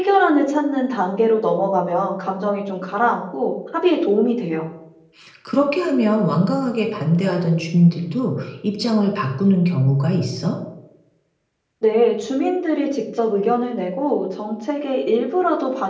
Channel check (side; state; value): both; identical; correlation 1.00